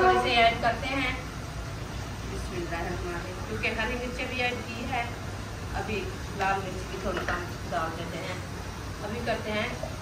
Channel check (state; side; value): identical; both; correlation 1.00